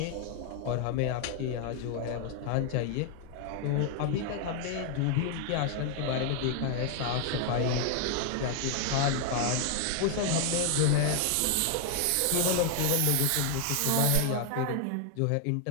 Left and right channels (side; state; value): both; different; correlation 0.00